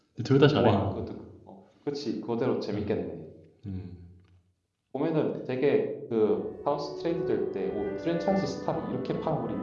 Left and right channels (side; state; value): both; identical; correlation 1.00